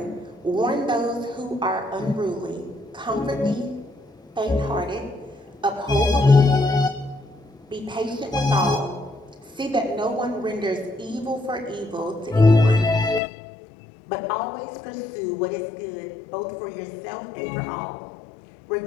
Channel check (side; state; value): right; drops out; at 13.2 s